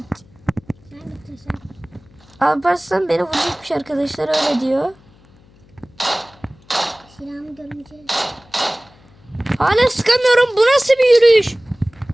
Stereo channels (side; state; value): left; noise; hum, 28 dB below the sound